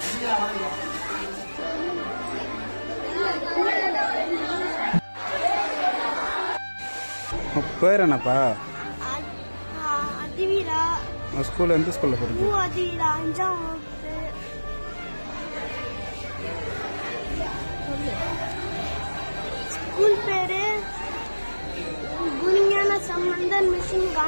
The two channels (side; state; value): both; inverted; correlation -1.00